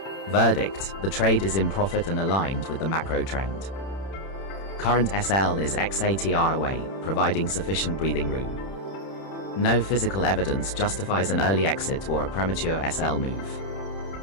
Verdict: the trade is in profit and aligned with the macro trend. Current SL is XATR away, providing sufficient breathing room. No physical evidence justifies an early exit or a premature SL move.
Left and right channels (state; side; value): late; right; 31 ms